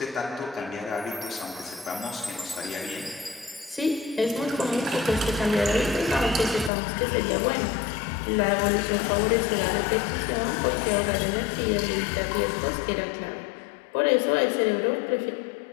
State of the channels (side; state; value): right; drops out; at 6.7 s